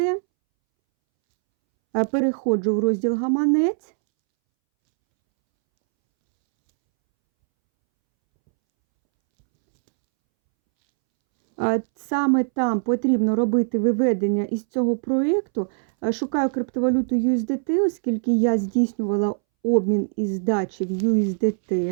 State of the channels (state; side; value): silent; left; 64 dB below the other